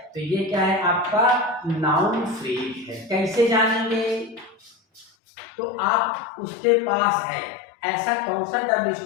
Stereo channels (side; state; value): right; drops out; at 5.1 s